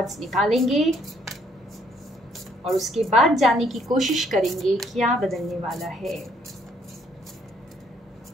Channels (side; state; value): both; normal; correlation 0.67